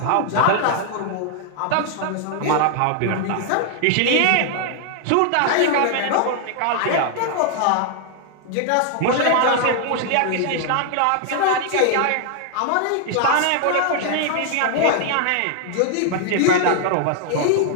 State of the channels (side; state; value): both; different; correlation 0.00